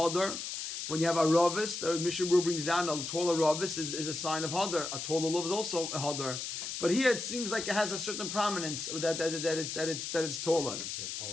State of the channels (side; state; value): left; noise; hiss, 5 dB below the sound